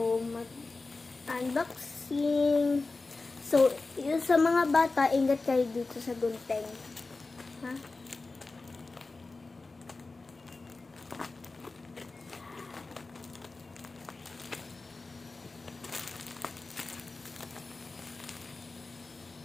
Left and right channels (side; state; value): right; quieter; 3.6 dB